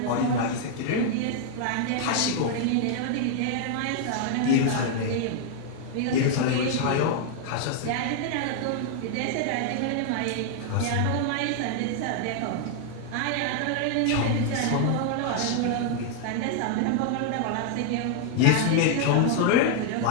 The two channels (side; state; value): both; different; correlation 0.00